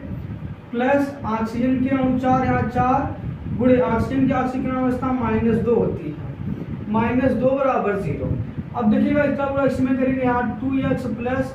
प्लस ऑक्सीजन के अणु 4 यहाँ 4 गुणे ऑक्सीजन की ऑक्सीकरण अवस्था -2 होती है, -2 बराबर 0। अब देखिएगा इसका गुणा इसमें करेंगे, यहाँ 2x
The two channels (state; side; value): identical; both; correlation 1.00